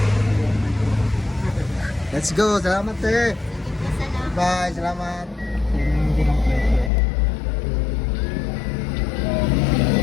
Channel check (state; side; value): drops out; right; at 6.9 s